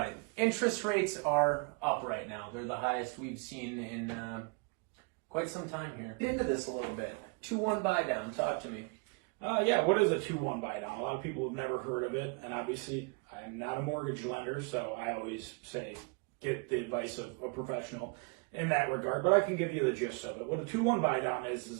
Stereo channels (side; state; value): left; quieter; 32.5 dB